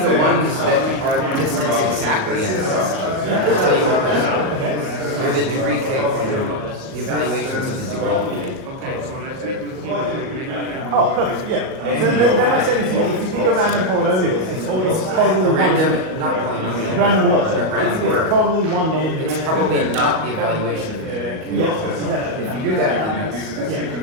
ones that are distance exactly n minus k. I can tell you what those are. Okay. They're the degree k polynomials, the evaluations of the degree k. Oh, perfect, yeah. So then my statement is, if you pick a random polynomial, it's probably A random, one, not polynomial. random word. A random It's word. probably one non-degree. It's probably not the evaluation of the degree k. Yes, exactly. If you do that, then that's Yeah,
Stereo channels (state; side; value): late; left; 38 ms